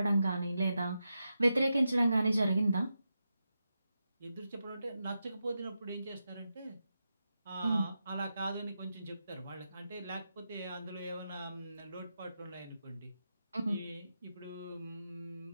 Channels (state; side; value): inverted; both; correlation -0.88